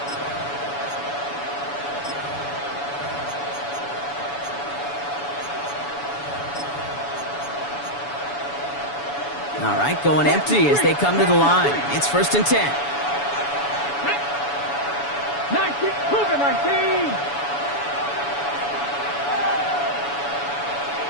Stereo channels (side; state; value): right; late; 7.0 ms